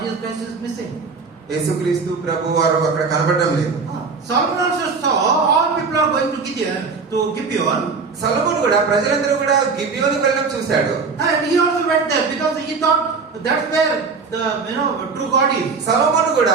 Jesus Christ is missing. యేసుక్రీస్తు ప్రభు వారు అక్కడ కనబడడం లేదు. Solomon also saw all people are going to Gibeon. సొలొమోను కూడా ప్రజలందరూ కూడా గిబియోనుకు వెళ్ళడం చూశాడు. And he also went there because he thought that's where the true God is. సొలొమోను కూడా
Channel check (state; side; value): quieter; left; 4.8 dB